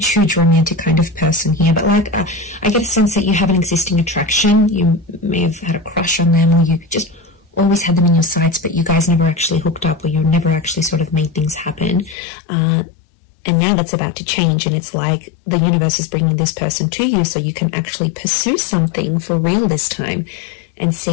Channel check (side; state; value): right; drops out; at 12.2 s